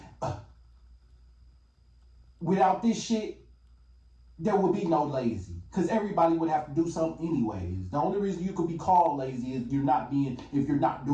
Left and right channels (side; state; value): both; identical; correlation 1.00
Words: without this shit, there would be no lazy. Because everybody would have to do something anyways. The only reason you could be called lazy is if you're not